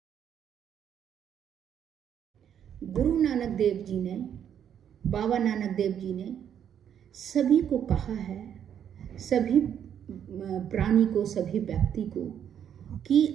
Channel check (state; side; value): quieter; left; 9.1 dB